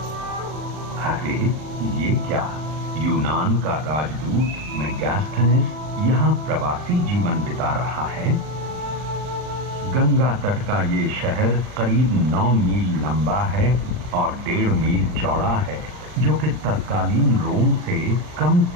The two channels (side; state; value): left; late; 39 ms